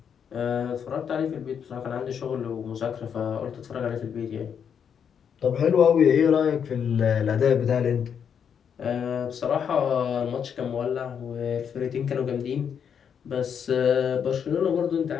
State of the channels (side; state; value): right; quieter; 7.7 dB